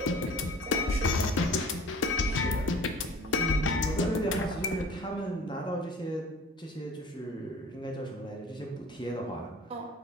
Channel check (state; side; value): normal; both; correlation 0.45